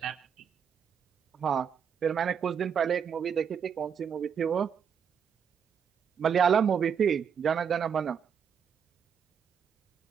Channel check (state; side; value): quieter; left; 7.4 dB